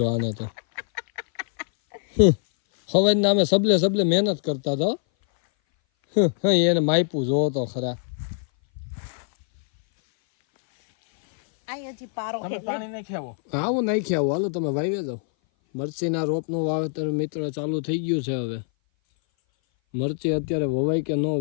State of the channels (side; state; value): right; silent; 59 dB below the other